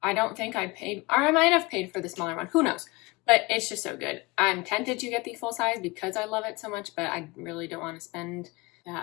I don't think I paid, or I might have paid for the smaller one. Who knows? But it's just so good. I'm tempted to get the full size because I love it so much, but I really don't want to spend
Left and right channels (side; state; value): right; quieter; 24.4 dB